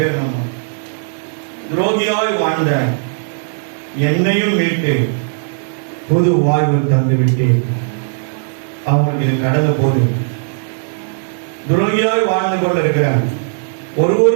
நம்ம துரோகியாய் வாழ்ந்த என்னையும் மீட்டு புது வாழ்வு தந்து விட்டு அவங்களுக்கு இது கடந்த போது துரோகியாய் வாழ்ந்து கொண்டிருக்கிற ஒரு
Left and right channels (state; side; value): silent; left; digital silence